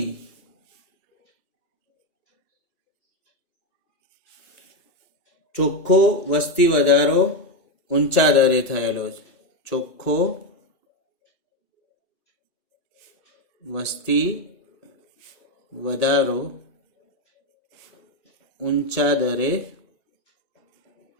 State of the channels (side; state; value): right; late; 2.8 ms